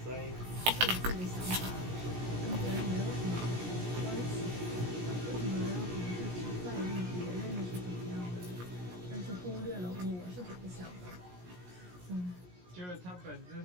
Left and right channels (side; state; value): left; late; 17 ms